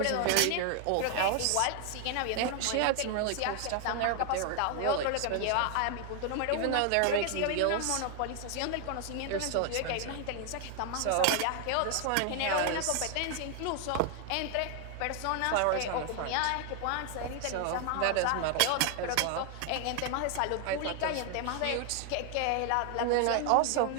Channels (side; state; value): both; different; correlation 0.00